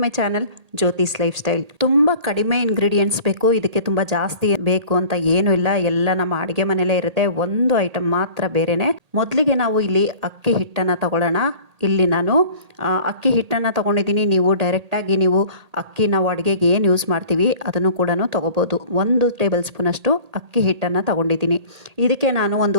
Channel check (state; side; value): late; left; 1.8 ms